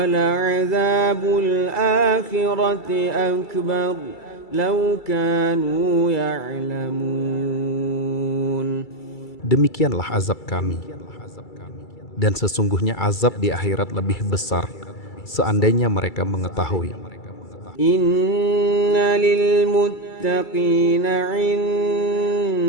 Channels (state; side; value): late; right; 2.3 ms